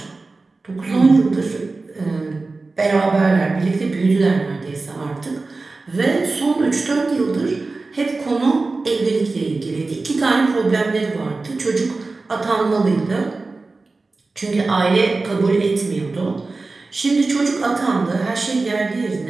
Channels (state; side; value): quieter; left; 3.6 dB